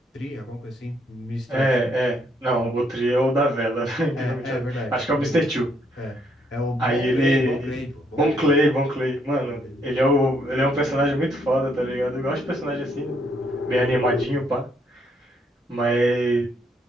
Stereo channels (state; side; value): normal; both; correlation 0.71